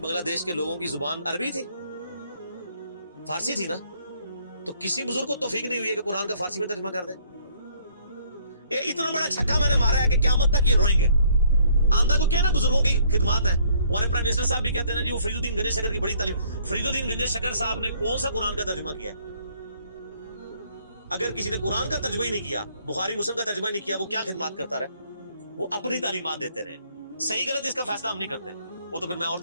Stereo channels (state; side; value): inverted; both; correlation -0.64